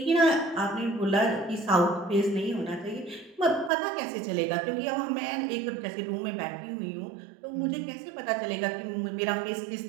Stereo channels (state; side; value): drops out; left; at 3.7 s